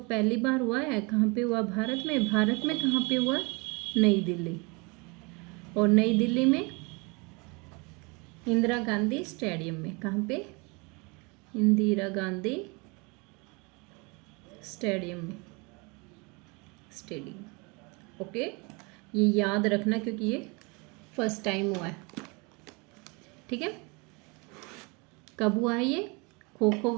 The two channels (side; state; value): left; quieter; 29.1 dB